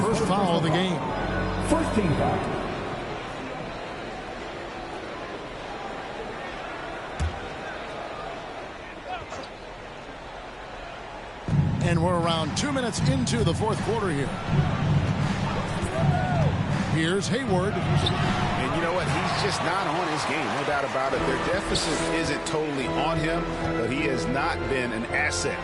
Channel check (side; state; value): both; identical; correlation 1.00